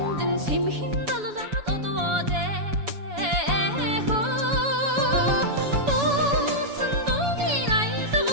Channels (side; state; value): left; late; 7.1 ms